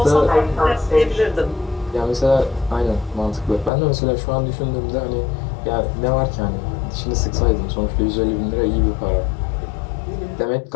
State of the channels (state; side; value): drops out; right; at 3.7 s